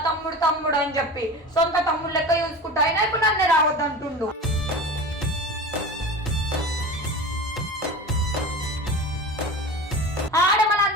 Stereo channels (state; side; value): normal; both; correlation 0.32